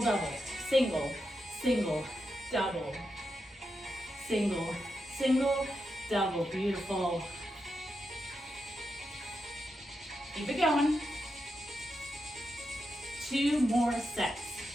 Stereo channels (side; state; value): both; normal; correlation 0.86